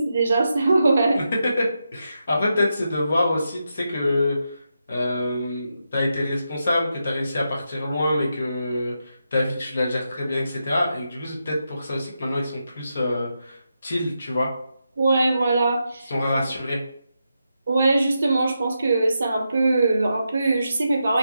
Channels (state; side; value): inverted; both; correlation -0.86